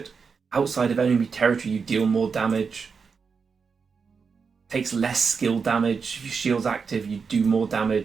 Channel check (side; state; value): left; quieter; 5.5 dB